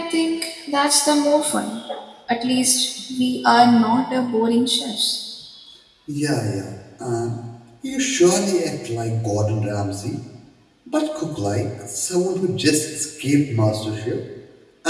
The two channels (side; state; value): both; identical; correlation 1.00